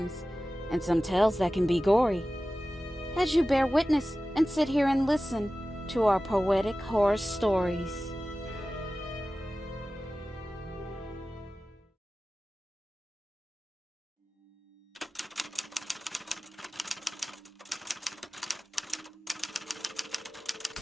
and some tales that can be gory. As you bear witness and sit here and listen to our poetic horror stories.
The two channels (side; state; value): both; normal; correlation 0.96